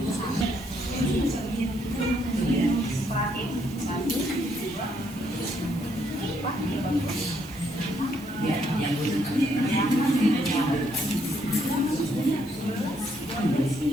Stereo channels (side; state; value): right; noise; hiss, 20 dB below the sound